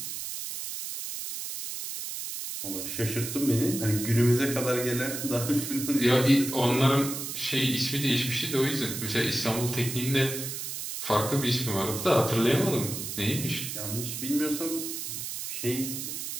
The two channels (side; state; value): right; noise; hiss, 6 dB below the sound